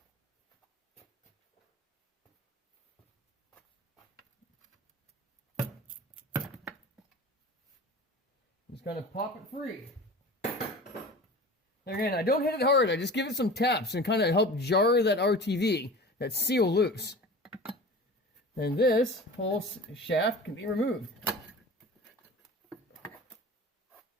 Just kind of pop it free. Again, I don't hit it hard. I just give it some taps and kind of help jar that RTV, that seal loose. And this whole shaft can be removed.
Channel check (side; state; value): both; normal; correlation 0.37